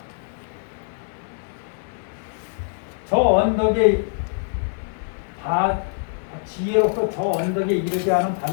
저 언덕에 지혜로서 저 언덕에 이르지 않은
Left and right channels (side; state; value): right; silent; digital silence